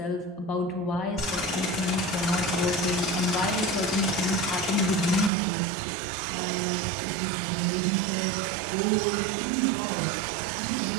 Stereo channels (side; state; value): left; drops out; at 5.3 s